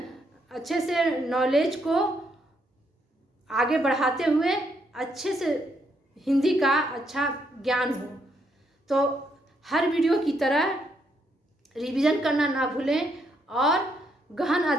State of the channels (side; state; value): both; normal; correlation 0.75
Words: से नॉलेज को आगे बढ़ाते हुए अच्छे से हिंदी का अच्छा ज्ञान हो। तो हर वीडियो की तरह रिवीजन करना ना भूलें और गहन